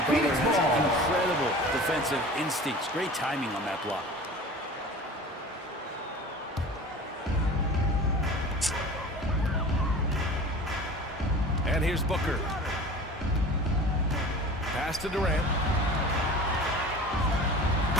Butler has incredible defensive instincts. Great timing on that block. And here's Booker. Pass to Durant.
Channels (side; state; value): both; normal; correlation 0.40